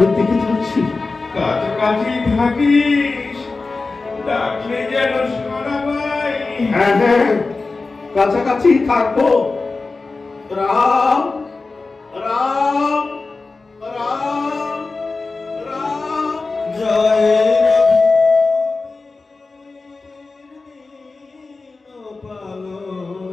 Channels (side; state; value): right; quieter; 3.8 dB